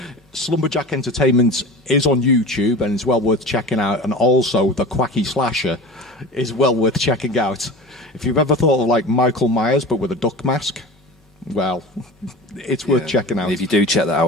Slumberjack Entertainment is on YouTube and it's well worth checking out, and also the Quacky Slasher is well worth checking out. If you've ever thought of like Michael Myers but with a duck mask, well, it's worth checking out. If you do check that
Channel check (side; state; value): both; normal; correlation 0.34